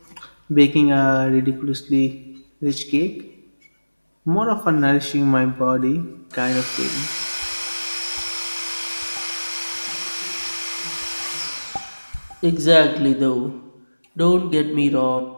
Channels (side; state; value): both; inverted; correlation -1.00